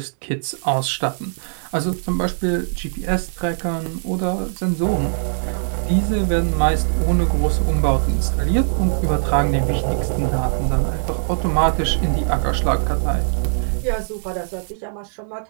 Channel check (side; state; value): left; silent; 65 dB below the other